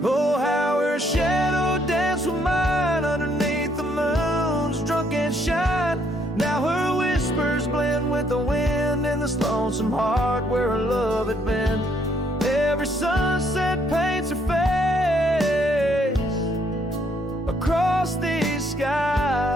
Oh, how her shadow danced with mine underneath the moon's drunken shine. Now her whispers blend with the wind in this lonesome heart where her love had been. Every sunset paints her face across these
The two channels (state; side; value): normal; both; correlation 0.69